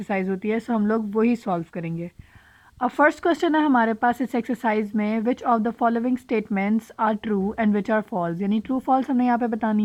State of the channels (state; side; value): identical; both; correlation 1.00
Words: होती है, सो हम लोग वही सॉल्व करेंगे। अब फर्स्ट क्वेश्चन है हमारे पास इस एक्सरसाइज में, which of the following statements are true and which are false, यानी ट्रू फॉल्स हमने यहाँ पे